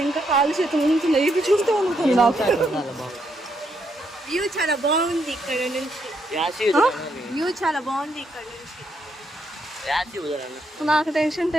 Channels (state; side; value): normal; both; correlation 0.77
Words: ఇంకా కాలు చేతుల నుంచి ఇది చూస్తూ ఉంటుంది. వ్యూ చాలా బాగుంది ఇక్కడ నుంచి. వ్యూ చాలా బాగుంది ఇక్కడ నుంచి. నాకు టెన్షన్